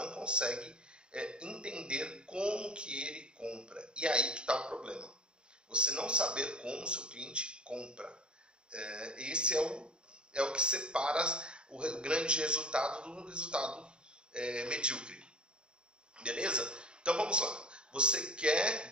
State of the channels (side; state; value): left; late; 0.051 ms